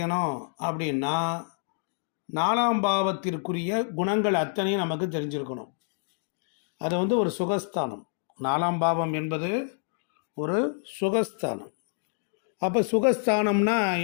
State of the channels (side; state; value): right; silent; digital silence